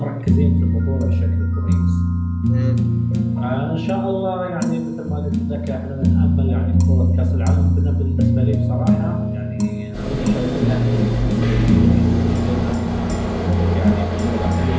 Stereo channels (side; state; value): both; identical; correlation 1.00